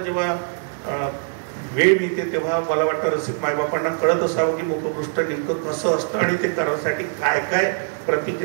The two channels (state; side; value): silent; left; digital silence